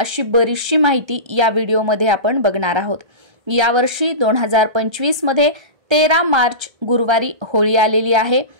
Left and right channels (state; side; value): late; left; 1.3 ms